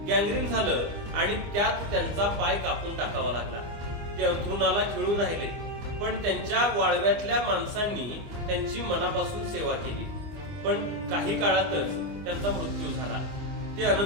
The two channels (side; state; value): left; late; 25 ms